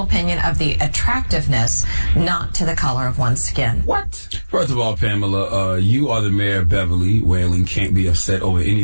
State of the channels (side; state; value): both; inverted; correlation -1.00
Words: opinion of the attractiveness, not to the color of one's skin. What? First of all, Pamela, you are the mayor of Beverly Whaling. Can't be upset over any